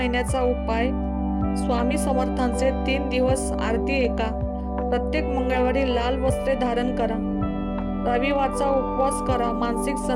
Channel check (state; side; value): identical; both; correlation 1.00